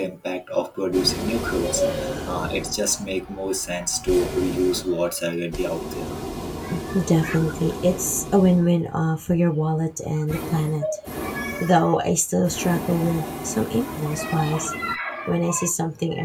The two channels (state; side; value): identical; both; correlation 1.00